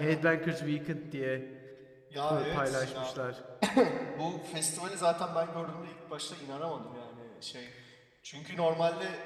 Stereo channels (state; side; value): identical; both; correlation 1.00